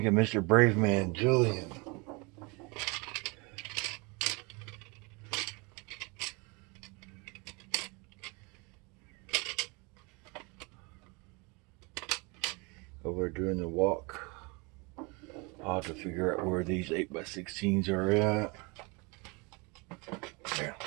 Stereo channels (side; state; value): left; quieter; 29.0 dB